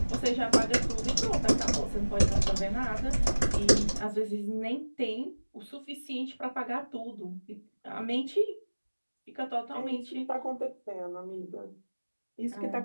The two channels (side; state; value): both; inverted; correlation -1.00